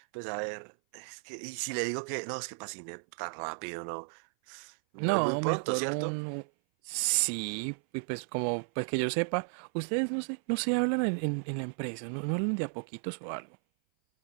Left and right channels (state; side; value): silent; left; 55 dB below the other